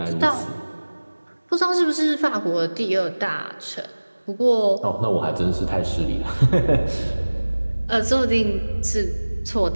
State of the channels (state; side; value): inverted; both; correlation -1.00